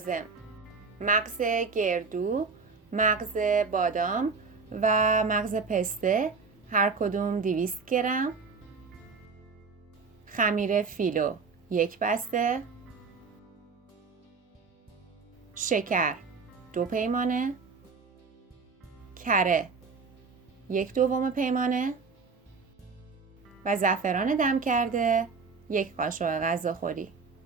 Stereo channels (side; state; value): left; quieter; 4.8 dB